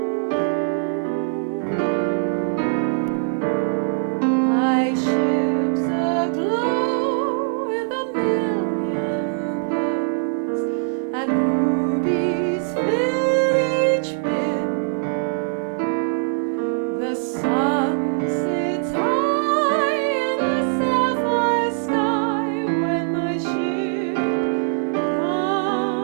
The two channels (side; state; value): left; silent; 64 dB below the other